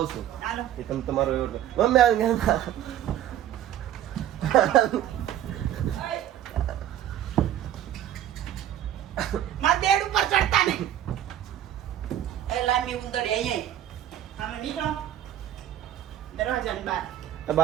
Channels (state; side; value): quieter; left; 11.6 dB